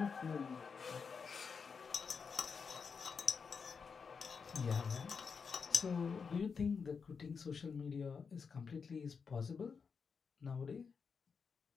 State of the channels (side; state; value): right; quieter; 5.7 dB